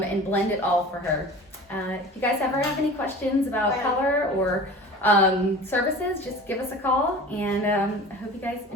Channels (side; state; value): both; normal; correlation 0.39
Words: blend it all for her. If you guys ever have any questions about color or services, just give us a call, and I hope you guys